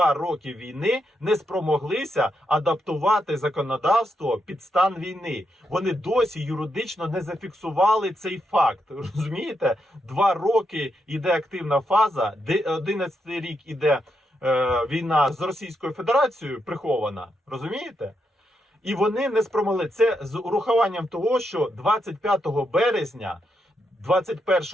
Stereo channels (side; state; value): both; normal; correlation 0.82